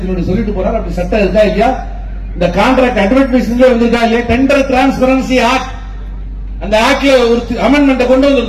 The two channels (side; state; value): both; identical; correlation 1.00